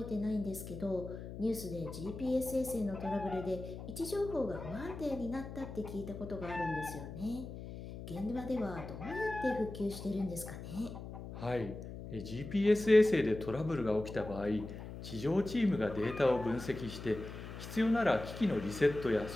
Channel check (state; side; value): noise; left; hum, 10 dB below the sound